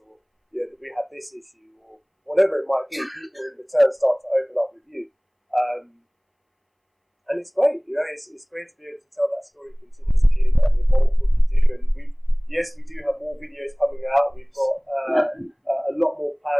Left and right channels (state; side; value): identical; both; correlation 1.00